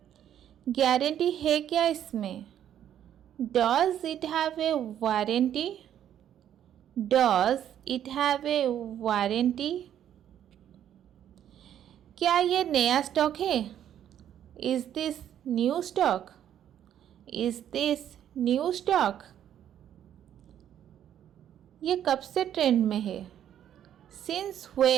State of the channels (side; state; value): left; quieter; 10.4 dB